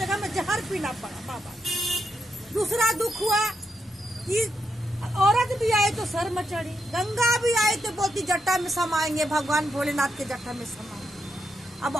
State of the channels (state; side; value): normal; both; correlation 0.83